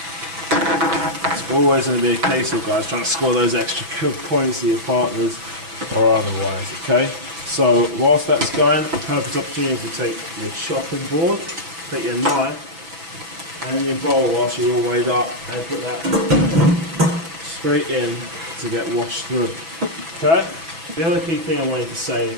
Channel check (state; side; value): late; left; 6.1 ms